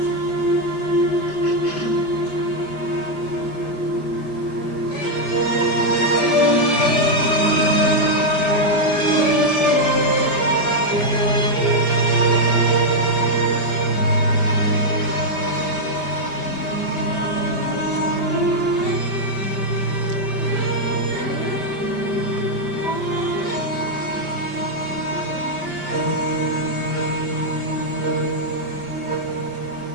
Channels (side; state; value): right; late; 5.0 ms